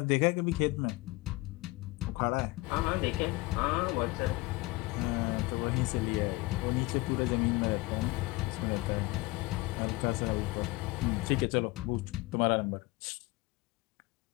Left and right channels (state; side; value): quieter; right; 22.0 dB